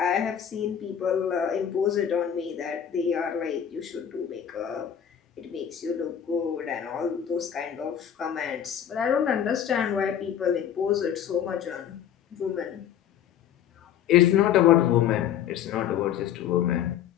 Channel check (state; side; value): quieter; right; 9.4 dB